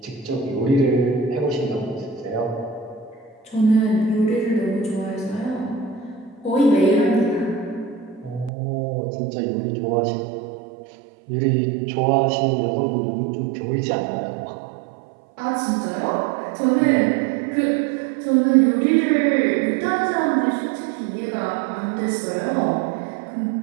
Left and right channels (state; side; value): drops out; left; at 8.5 s